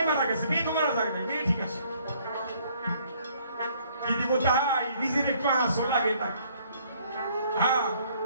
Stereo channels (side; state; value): both; inverted; correlation -0.63